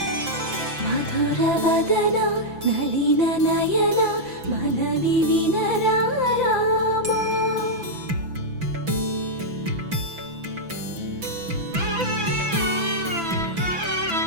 మధుర వదన నళిన నయన మనవి వినరా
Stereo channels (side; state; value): left; late; 5.9 ms